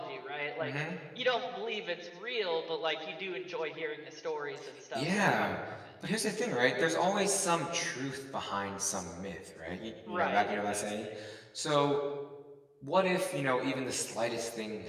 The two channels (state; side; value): identical; both; correlation 1.00